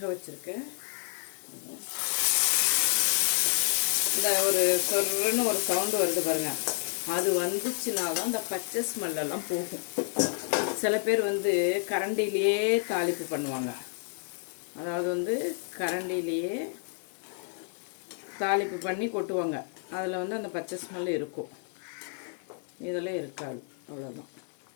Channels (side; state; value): right; silent; 58 dB below the other